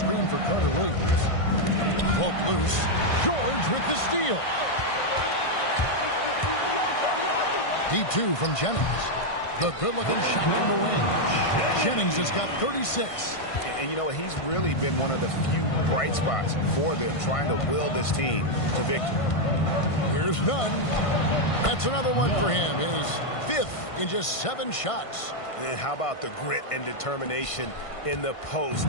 for Carter Williams. Poke loose. George with the steal. Deep 2 from Jennings. The good-looking shot from the wing. Jennings has got 36. And you know, he's really been one of the few bright spots for them, trying to will this team to victory. Here's Nunn. That's another one for him. His 5th in just 7 shots. And how about the grit and determination in the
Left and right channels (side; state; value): right; late; 1.5 ms